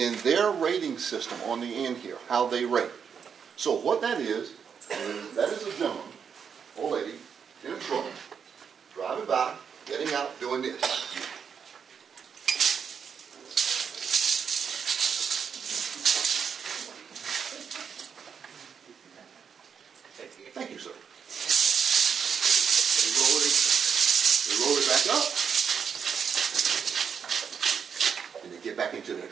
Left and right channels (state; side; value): quieter; left; 6.9 dB